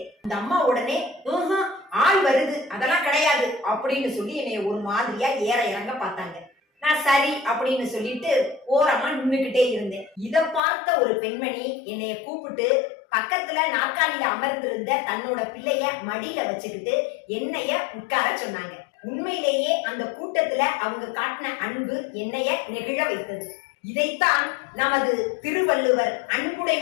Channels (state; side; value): drops out; right; at 10.6 s